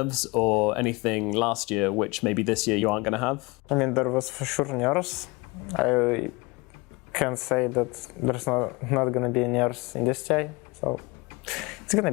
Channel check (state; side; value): quieter; right; 25.6 dB